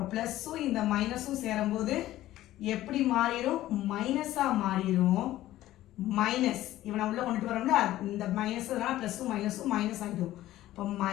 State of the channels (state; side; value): quieter; right; 14.7 dB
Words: ப்ளஸ்ஸும் இந்த மைனஸும் சேரும்போது எப்படி மாறிடும்? மைனஸாக மாறிடும். மைனஸ் இவனை உள்ள கொண்டுட்டு வரோம்ல இந்த மைனஸ் ப்ளஸ்ஸும் மைனஸும் மைனஸ் ஆகிடும். இப்போ